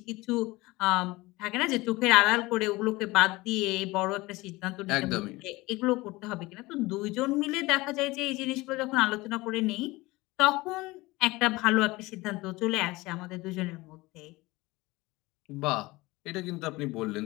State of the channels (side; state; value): right; quieter; 21.1 dB